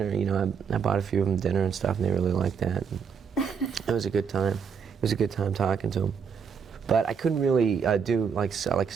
I bought a few of them dinner and stuff, and they really liked that. And it was a good time. It was a good time talking to them. But I couldn't really do like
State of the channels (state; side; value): quieter; left; 6.5 dB